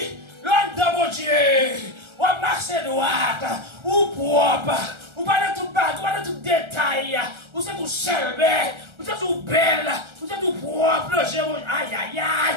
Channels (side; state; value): left; late; 1.3 ms